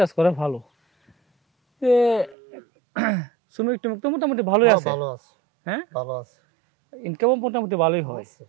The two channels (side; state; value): left; drops out; at 2.4 s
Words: করে ভালো। শ্রমিক টমিক তো মোটামুটি ভালোই আছে। ভালো আছে, হ্যাঁ ভালো আছে, ইনকামও মোটামুটি ভালোই হয়।